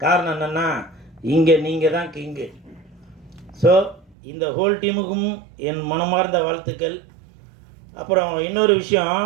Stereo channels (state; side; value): drops out; left; at 4.2 s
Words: காரணம் என்னென்னா, இங்கே நீங்கள் தான் கிங்கு. ஸோ இந்த ஹோல் டீமுக்கும் என் மனமார்ந்த வாழ்த்துக்கள். அப்புறம் இன்னொரு விஷயம்,